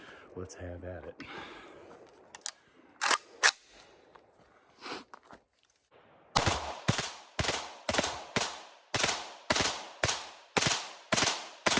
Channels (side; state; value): both; identical; correlation 1.00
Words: let's have at it.